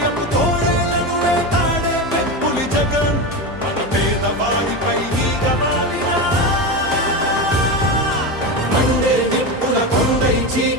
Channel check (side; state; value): both; normal; correlation 0.19